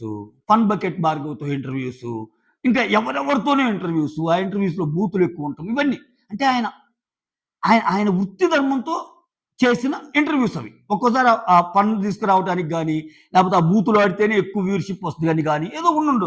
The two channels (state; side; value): identical; both; correlation 1.00